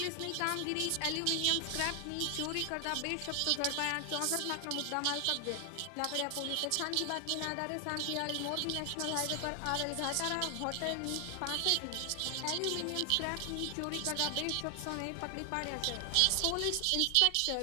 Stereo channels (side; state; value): both; different; correlation 0.00